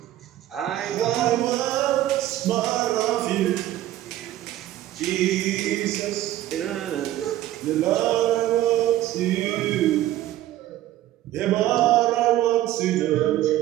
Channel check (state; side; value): quieter; left; 14.0 dB